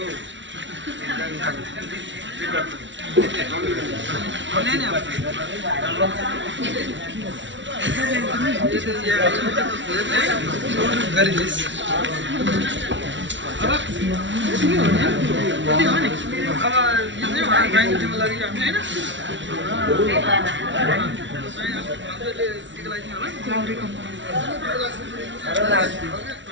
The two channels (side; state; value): left; late; 0.55 ms